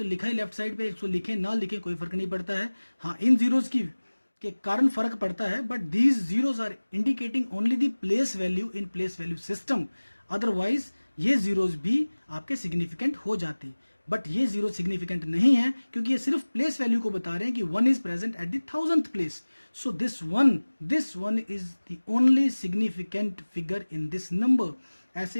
लिखा है लेफ्ट साइड पे, इसको लिखे ना लिखे कोई फर्क नहीं पड़ता है। हाँ, इन जीरोस के कारण फर्क पड़ता है, but these zeros are indicating only the place value in place value system. Otherwise ये जीरोज भी आपके सिग्निफिकेंट हो जाते, बट ये जीरो सिग्निफिकेंट नहीं है क्योंकि ये सिर्फ प्लेस वैल्यू को बता रहे हैं कि 1 is present at the 1000th place. So this one is the only significant figure in this number.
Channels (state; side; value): inverted; both; correlation -1.00